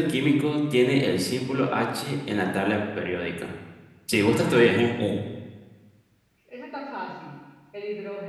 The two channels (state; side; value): identical; both; correlation 1.00